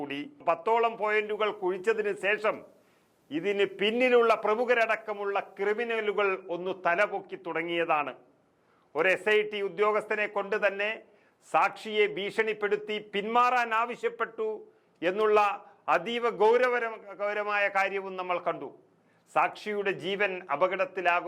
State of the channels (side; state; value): both; identical; correlation 1.00